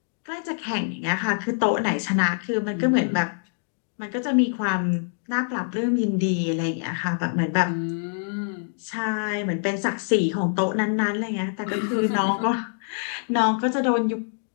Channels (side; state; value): right; silent; digital silence